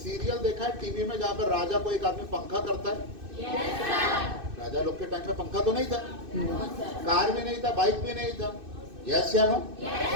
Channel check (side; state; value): left; late; 2.6 ms